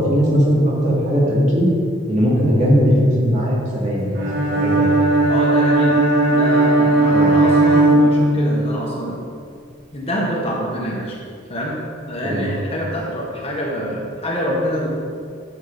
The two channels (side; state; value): both; normal; correlation 0.55